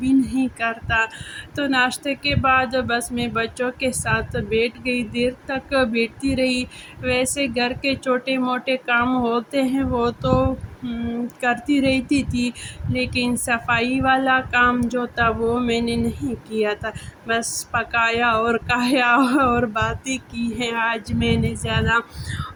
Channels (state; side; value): identical; both; correlation 1.00